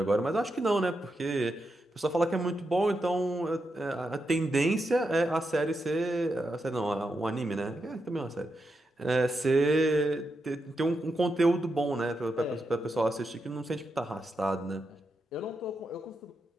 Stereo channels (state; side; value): normal; both; correlation 0.85